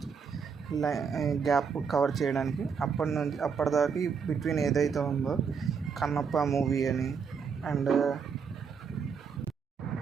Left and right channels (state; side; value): quieter; left; 6.1 dB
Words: గ్యాప్ కవర్ చేయడానికి. అప్పటిదాకా బిట్వీన్ ఏదైతే ఉందో కన్నప్ప మూవీ అని అండ్